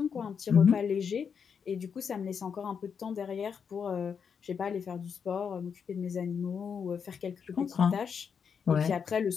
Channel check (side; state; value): right; quieter; 6.7 dB